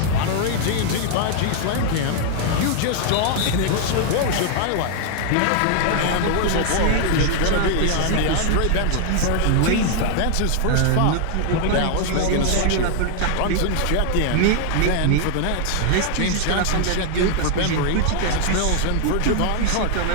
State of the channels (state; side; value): different; both; correlation 0.00